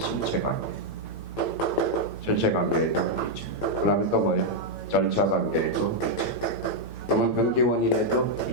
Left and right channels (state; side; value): late; right; 8.8 ms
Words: 관계. 전체 관계에도 있죠. 그 다음에 또 뭐예요? 절차 관계에도 있죠. 그러면 등기원인에도